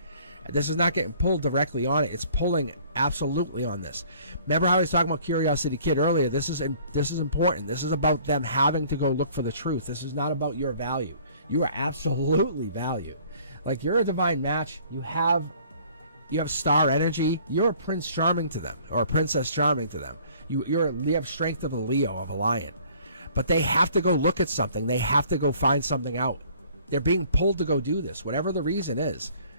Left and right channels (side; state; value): both; inverted; correlation -0.55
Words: This is not getting pulled directly on it. It's pulling absolutely on this. Remember how I was talking about Curiosity Kid earlier? This is important. This is about them having to go look for the truth. This is not about your value. You are absolutely valued. Like you're a divine match. You have star energy. You're a Prince Charming to them, or a Princess Charming to them. You have strength of a Leo, of a lion. But they have to go look at something. They have to go find something out. They're being pulled to go do this, whatever the reason is.